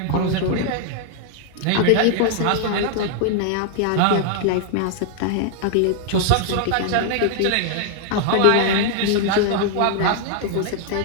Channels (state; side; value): different; both; correlation 0.00